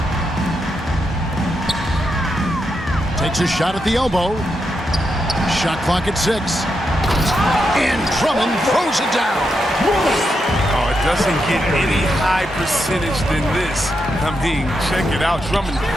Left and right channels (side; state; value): both; normal; correlation 0.84